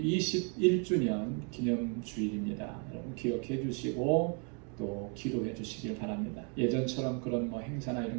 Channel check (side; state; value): left; quieter; 37.7 dB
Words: 21주년 기념 주일입니다. 여러분 기억해 주시고 또 기도해 주시길 바랍니다. 예전처럼 그런 뭐 행사나